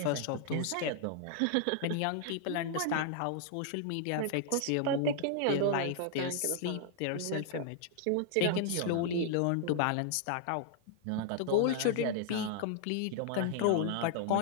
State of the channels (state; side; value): different; both; correlation -0.01